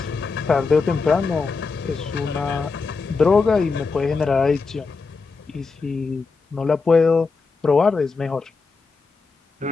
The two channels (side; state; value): right; quieter; 4.4 dB